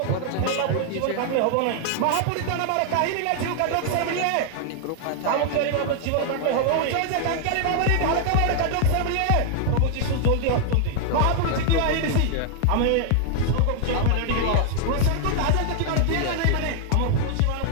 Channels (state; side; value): different; both; correlation 0.00